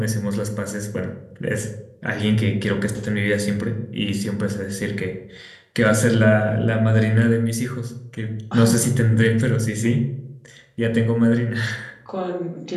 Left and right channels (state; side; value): identical; both; correlation 1.00